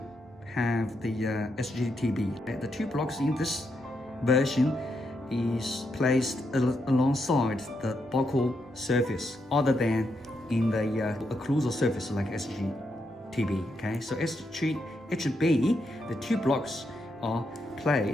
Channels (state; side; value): normal; both; correlation 0.81